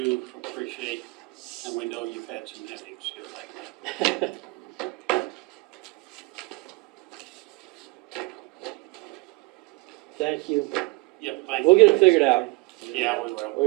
appreciate, and we know you've had some headaches here lately. Thank you. Yep, thank you. We'll get it figured out. Yeah, we will.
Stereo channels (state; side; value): quieter; left; 25.5 dB